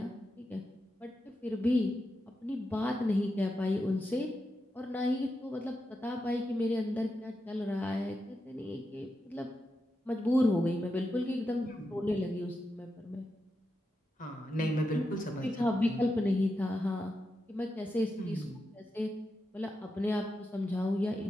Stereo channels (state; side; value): normal; both; correlation 0.87